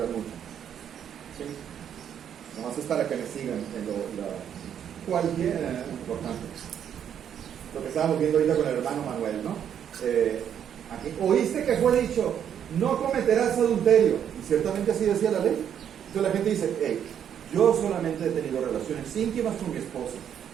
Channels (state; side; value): quieter; left; 9.0 dB